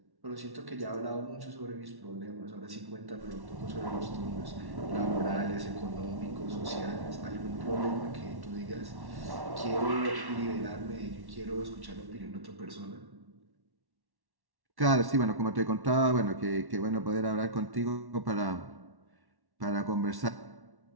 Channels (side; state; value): left; late; 1.1 ms